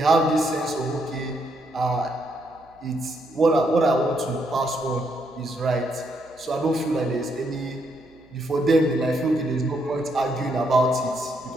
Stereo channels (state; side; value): noise; right; hum, 30 dB below the sound